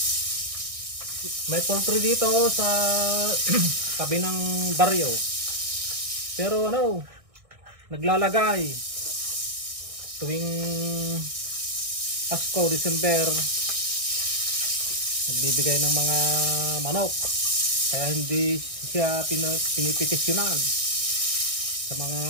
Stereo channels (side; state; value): left; late; 1.6 ms